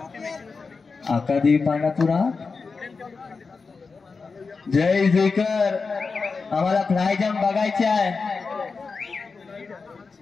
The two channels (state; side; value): quieter; right; 4.6 dB